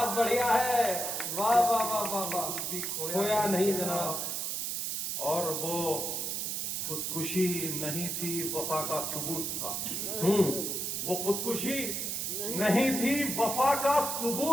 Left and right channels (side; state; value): right; noise; hiss, 2 dB below the sound